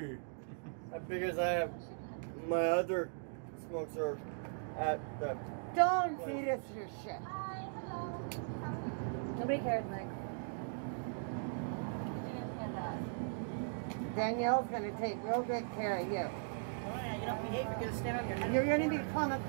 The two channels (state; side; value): silent; left; digital silence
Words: Because I have my other smokes are at the. Don't feed us your shit. Nobody cares, Nick. Danielle's gonna take real good care of you. Oh yeah, you don't behave, you're going to stand on your head. You're gonna become a